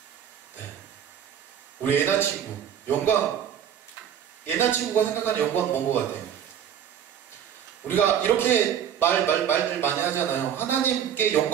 네. 우리 애나 친구, 영광, 애나 친구가 생각하는 영광은 뭔 것 같아요? 우리가 이렇게 말들 많이 하잖아요. 하나님께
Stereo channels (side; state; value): left; quieter; 9.2 dB